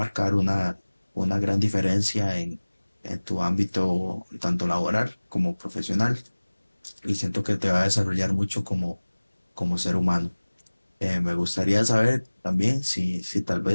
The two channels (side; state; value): both; inverted; correlation -1.00